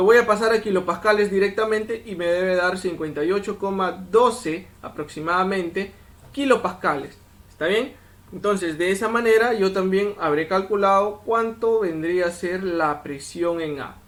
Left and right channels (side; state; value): both; identical; correlation 1.00